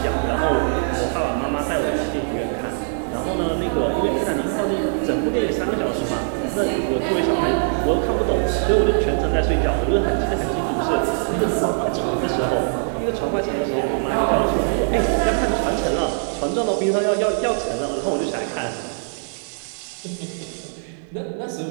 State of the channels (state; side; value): silent; left; digital silence